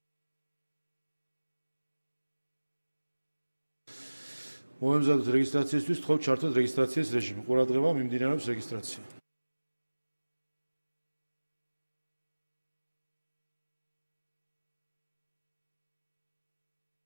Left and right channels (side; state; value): both; inverted; correlation -1.00